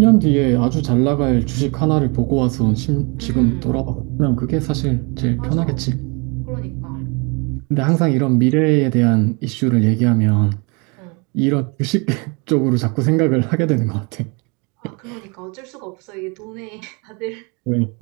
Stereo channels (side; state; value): left; quieter; 31.2 dB